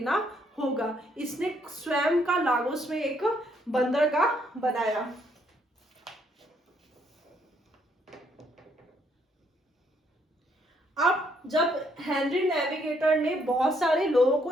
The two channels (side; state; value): both; normal; correlation 0.70